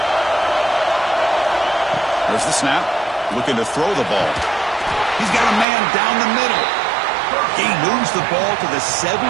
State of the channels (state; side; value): drops out; left; at 5.7 s